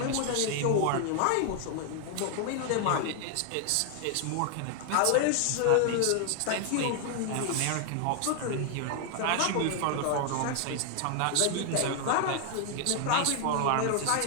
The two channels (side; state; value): both; different; correlation 0.00